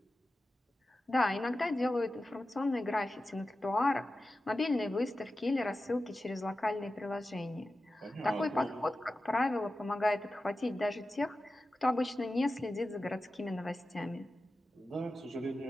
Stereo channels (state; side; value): normal; both; correlation 0.93